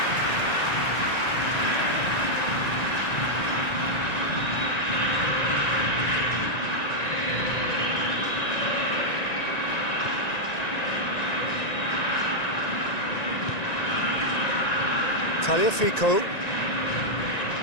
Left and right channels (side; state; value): right; late; 1.9 ms